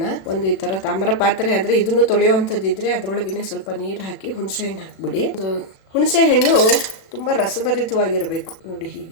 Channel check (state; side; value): late; right; 36 ms